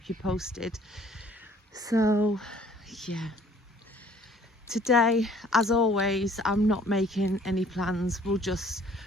you posted. So yeah, today, as always, I'm not making any plans. We'll just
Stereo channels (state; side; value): normal; both; correlation 0.56